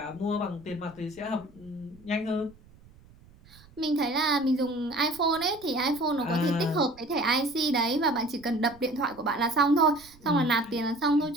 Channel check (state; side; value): noise; right; rumble, 25 dB below the sound